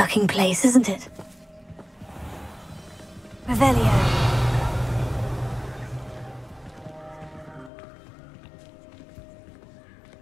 place, isn't it? Revelio.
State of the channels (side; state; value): right; drops out; at 7.7 s